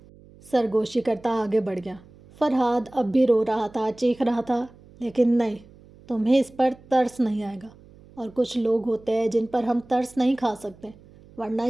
سرگوشی کرتا آگے بڑھ گیا. فرحاد اب بھی رو رہا تھا، چیخ رہا تھا. لیکن نہیں، تمہیں اس پر ترس نہیں آئے گا. اور کچھ لوگ ہوتے ہیں جن پر ہم ترس نہیں کھا سکتے، ورنہ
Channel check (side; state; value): right; noise; hum, 24 dB below the sound